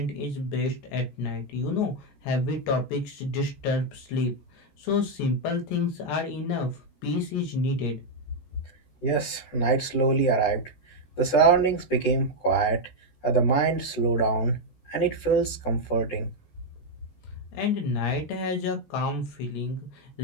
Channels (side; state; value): right; late; 14 ms